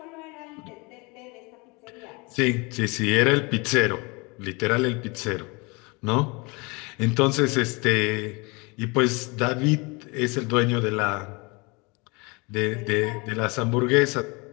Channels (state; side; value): quieter; right; 27.9 dB